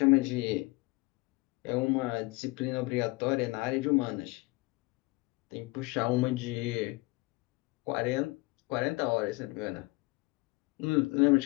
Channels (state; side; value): quieter; right; 24.1 dB